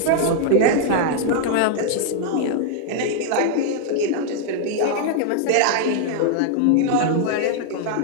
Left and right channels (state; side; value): different; both; correlation 0.00